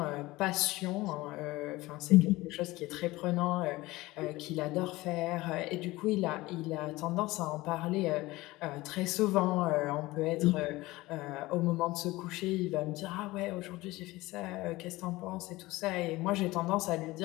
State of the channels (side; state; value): right; quieter; 19.6 dB